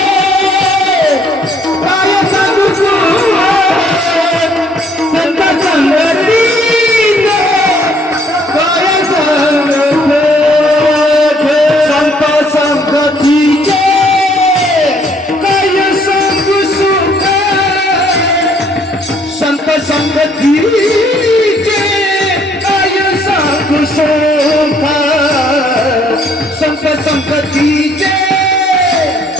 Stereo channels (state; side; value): normal; both; correlation 0.64